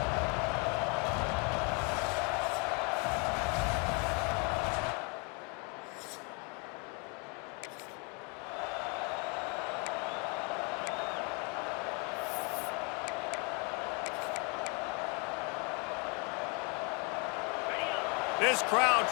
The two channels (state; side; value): quieter; right; 33.7 dB